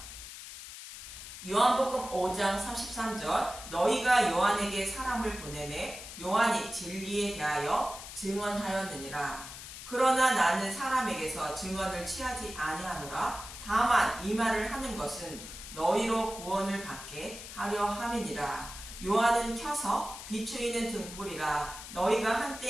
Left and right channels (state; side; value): noise; left; hiss, 12 dB below the sound